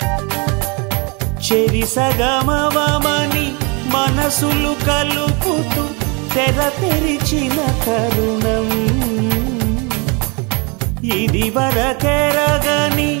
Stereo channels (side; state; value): left; quieter; 30.9 dB